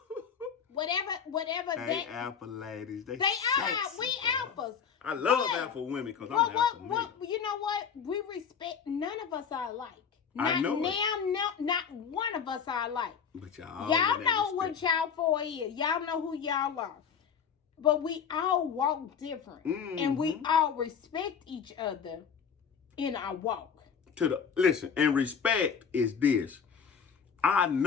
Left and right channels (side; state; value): right; quieter; 6.9 dB